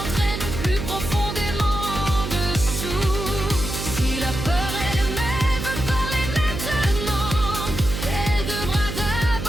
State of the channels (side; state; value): right; noise; hum, 6 dB below the sound